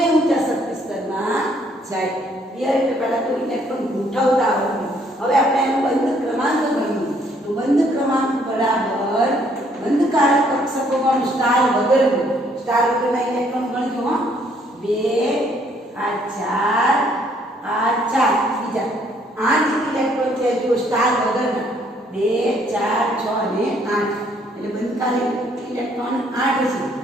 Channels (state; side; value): normal; both; correlation 0.66